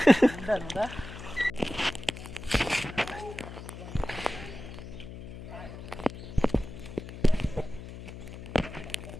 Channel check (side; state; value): left; noise; hum, 11 dB below the sound